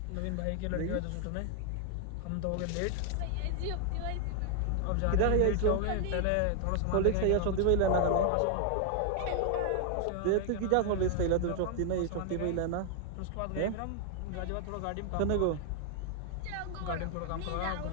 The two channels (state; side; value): different; both; correlation 0.00